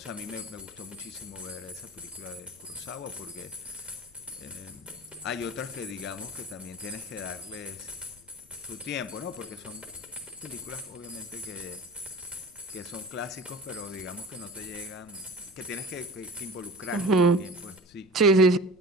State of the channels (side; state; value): left; noise; rumble, 26 dB below the sound